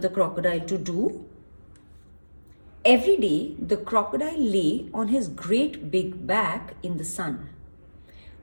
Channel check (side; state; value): both; inverted; correlation -1.00